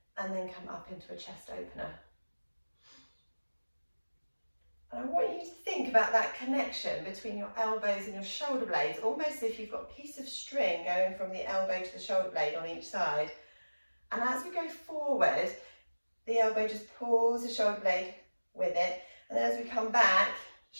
and then come up into a chest opener. And I want you to think about that connection between your elbows and your shoulder blades, almost as if you've got a piece of string going from the elbow to the shoulder blade on each side. And as we go forward, the elbow just pulls the shoulder blade with it, and then as we come back,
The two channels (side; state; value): both; inverted; correlation -1.00